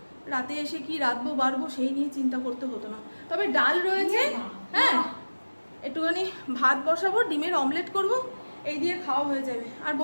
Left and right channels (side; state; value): both; inverted; correlation -1.00